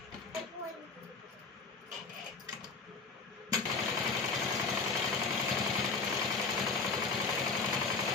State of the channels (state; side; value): quieter; right; 4.4 dB